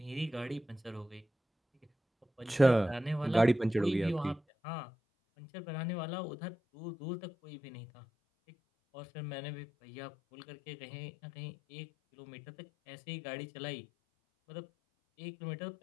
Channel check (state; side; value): drops out; right; at 4.4 s